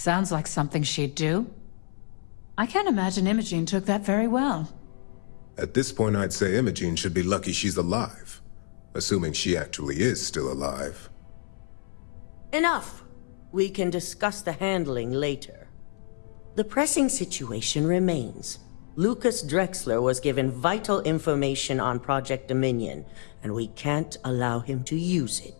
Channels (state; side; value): silent; right; 59 dB below the other